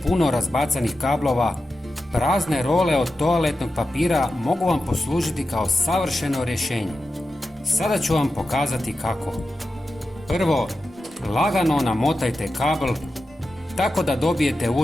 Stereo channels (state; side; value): normal; both; correlation 0.91